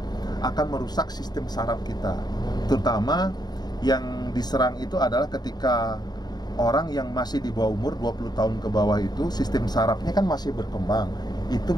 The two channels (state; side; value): late; right; 0.20 ms